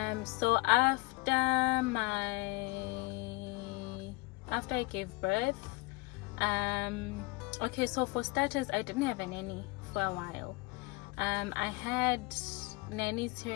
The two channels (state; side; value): quieter; right; 24.6 dB